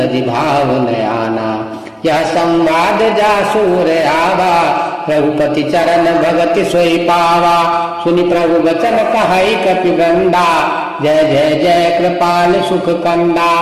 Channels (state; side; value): identical; both; correlation 1.00